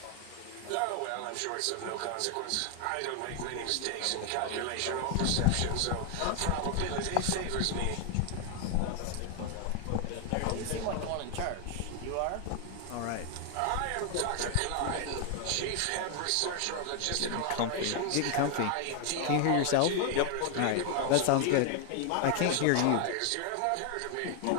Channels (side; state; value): both; different; correlation 0.00